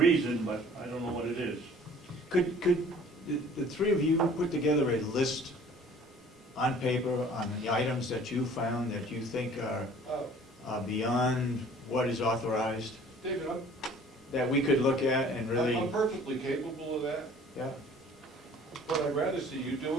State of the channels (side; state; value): both; normal; correlation 0.51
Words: but I don't know what it is. Could the three of you put together a list on paper on the items that you found that you think are beyond what is authorized, David, that we could look at and really, I'm perfectly capable of that, yeah? but I'd rather see you